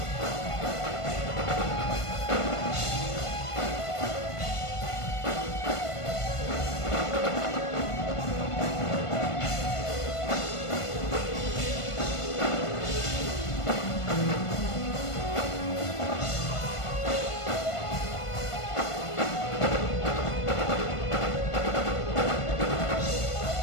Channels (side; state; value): right; late; 1.5 ms